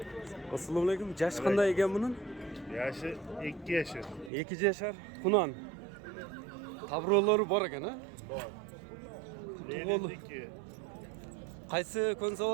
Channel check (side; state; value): left; drops out; at 4.3 s